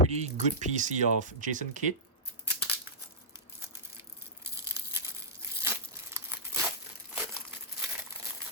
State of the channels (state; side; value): normal; both; correlation -0.14